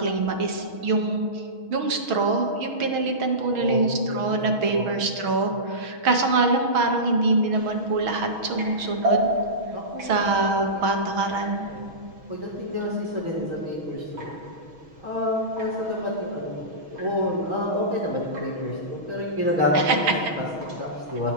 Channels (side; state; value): left; late; 6.3 ms